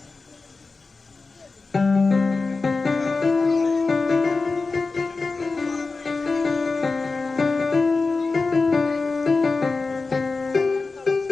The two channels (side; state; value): right; quieter; 4.0 dB